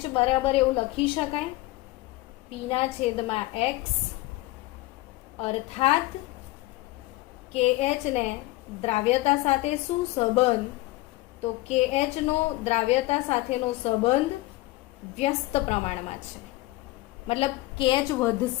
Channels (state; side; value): quieter; right; 19.3 dB